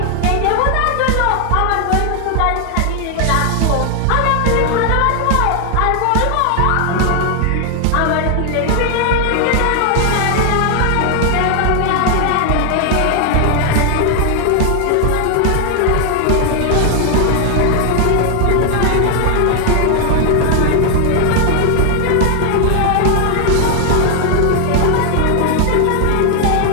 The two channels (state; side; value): different; both; correlation 0.00